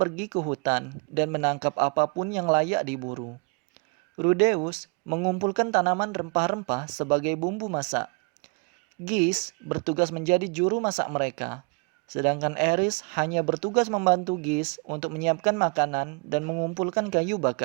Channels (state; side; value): quieter; left; 33.5 dB